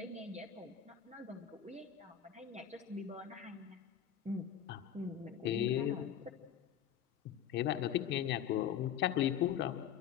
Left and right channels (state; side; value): quieter; right; 9.5 dB